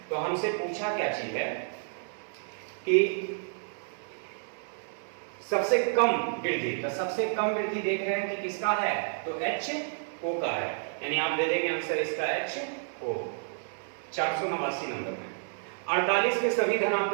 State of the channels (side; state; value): left; silent; 58 dB below the other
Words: तो हमसे पूछा क्या चीज है कि सबसे कम वृद्धि, तो सबसे कम वृद्धि देख रहे हैं कि किसका है, तो एच ओ का है, यानी आप दे देंगे आंसर इसका एच ओ। 489 नंबर में 48 के सभी